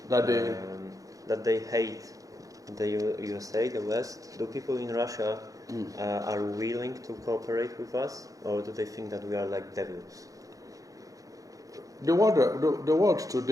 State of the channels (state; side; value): late; left; 0.17 ms